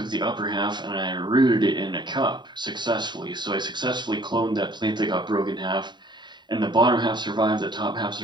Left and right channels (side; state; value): left; late; 0.22 ms